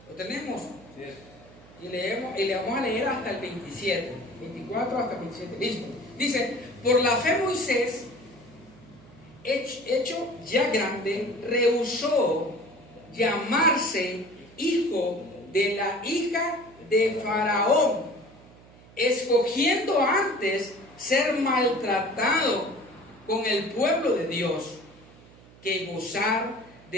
Lo tenemos. Y le vamos a leer hasta el 27. 24 hasta el 27. Listo. Dice, por la fe Moisés, hecho ya grande, rehusó llamarse hijo de la hija de Faraón, escogiendo antes ser maltratado con el pueblo de Dios que gozar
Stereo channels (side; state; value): right; noise; hum, 23 dB below the sound